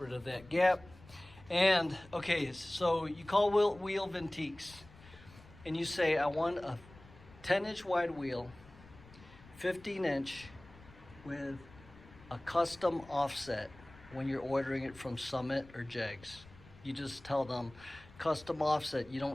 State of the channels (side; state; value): left; noise; rumble, 22 dB below the sound